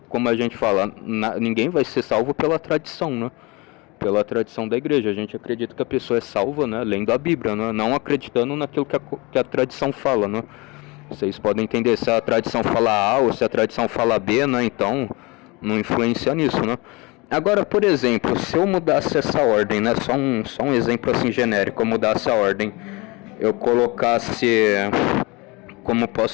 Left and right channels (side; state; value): right; quieter; 25.6 dB